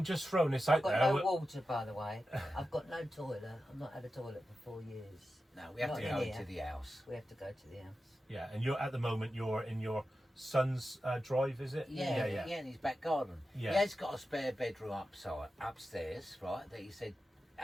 just throwing this out I've got there. no water, by the way. I've got no toilet. I've not had a toilet for 4 years. No, we have Not to in go here. to the house. We have to go to the house. Yeah, and at the moment you're in your son's drive, is it? Yeah, in his back garden. Yeah. He has got a spare bedroom upstairs, right, that he said,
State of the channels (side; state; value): both; normal; correlation 0.92